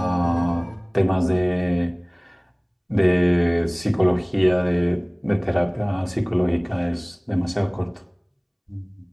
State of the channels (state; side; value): identical; both; correlation 1.00